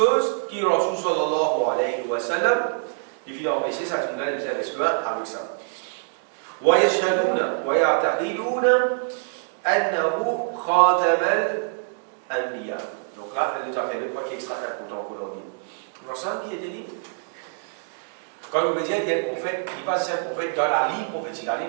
qui Rasul sallallahu alayhi wa sallam, il finit empêcher, ça, je vous ai besoin avec ça. ويشهدون ويعتقدون أنه خاتم الأنبياء. Donc là, elle nous a fait deux points qui extra important qu'on a dit. L'ensemble qui était dit, quand on veut dire qu'il y a un prophète, il passe un prophète dans la ligne prophétique. La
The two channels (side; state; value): left; silent; digital silence